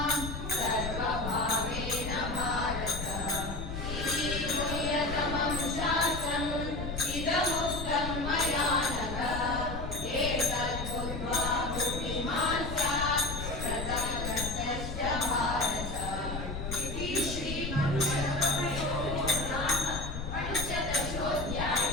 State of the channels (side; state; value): left; noise; rumble, 6 dB below the sound